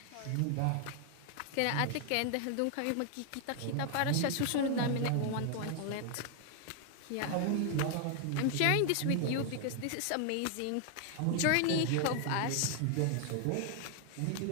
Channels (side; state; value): both; different; correlation 0.00